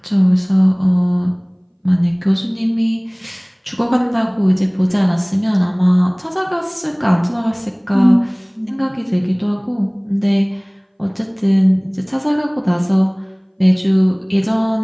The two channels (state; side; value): identical; both; correlation 1.00